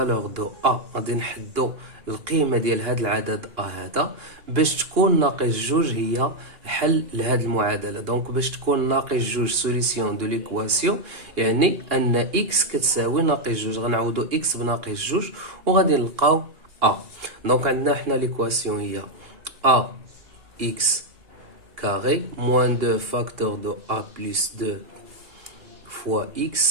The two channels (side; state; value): left; late; 2.8 ms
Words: de A. غادي نحدو القيمة ديال هذا العدد A هذا باش تكون ناقص جوج هي حل لهذه المعادلة. دونك باش تكون ناقص جوج سوليسيون دو ليكواسيون يعني ان x كتساوي ناقص جوج. غنعوضو x بناقص جوج وغادي نلقاو A. دونك عندنا حنا ليكواسيون هي A x carré moins 2 facteur de A plus 2 fois